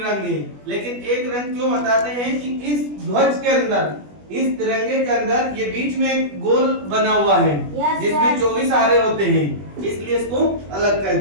है। लेकिन एक रंग क्यों बताते हैं कि इस ध्वज के अंदर, इस तिरंगे के अंदर ये बीच में एक गोल बना हुआ है जिसमें 24 आरे होते हैं, इसलिए इसको अलग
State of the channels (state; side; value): late; left; 20 ms